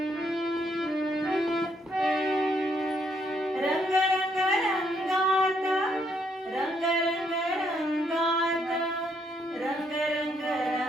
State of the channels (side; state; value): both; normal; correlation 0.72